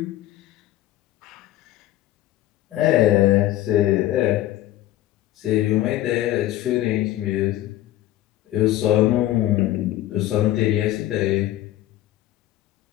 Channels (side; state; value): right; quieter; 14.2 dB